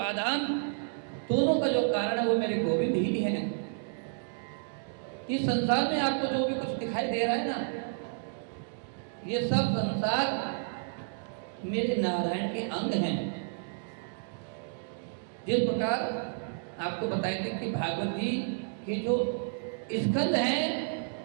दोनों का जो कारण है वो मेरे गोविंद ही है। इस संसार में आपको जो भी कुछ दिखाई दे रहा है ना, ये सब संसार मेरे नारायण के अंग हैं। जिस प्रकार आपको बताए थे कि भागवत जी के जो स्कंद हैं,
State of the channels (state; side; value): silent; left; digital silence